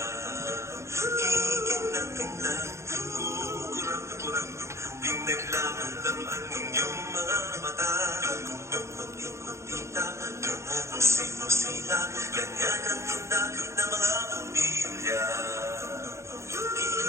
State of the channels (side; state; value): left; late; 0.14 ms